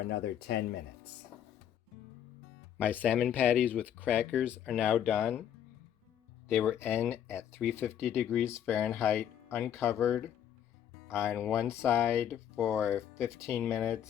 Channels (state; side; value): quieter; right; 9.8 dB